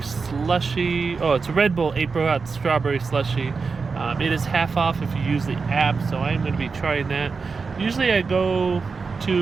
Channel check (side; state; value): left; quieter; 4.8 dB